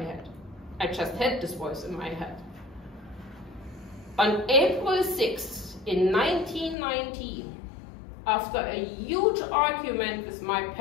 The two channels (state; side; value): drops out; right; at 6.8 s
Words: head. I just had this voice in my head. On April 6th in 1990, after a huge argument with my